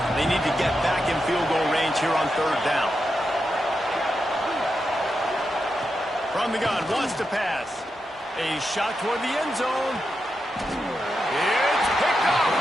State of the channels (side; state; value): both; normal; correlation 0.87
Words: they need to get back in field goal range here on 3rd down. From the gun, wants to pass. A shot toward the end zone. It's picked off,